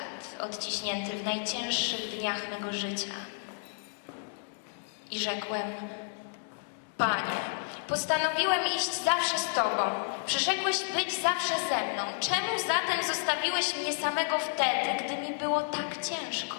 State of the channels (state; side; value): silent; right; digital silence